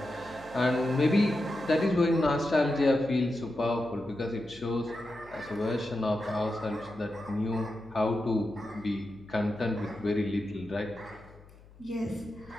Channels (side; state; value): left; noise; hum, 23 dB below the sound